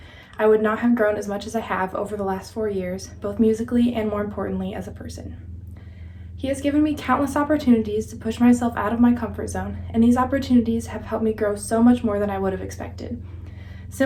I would not have grown as much as I have over the last 4 years, both musically and more importantly as a person. He has given me countless opportunities to push myself out of my comfort zone, and these opportunities have helped me grow so much more than I would have expected.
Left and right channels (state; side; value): identical; both; correlation 1.00